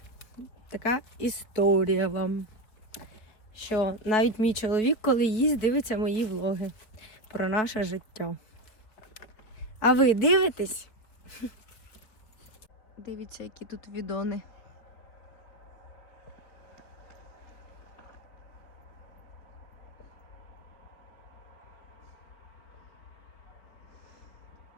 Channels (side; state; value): right; late; 4.2 ms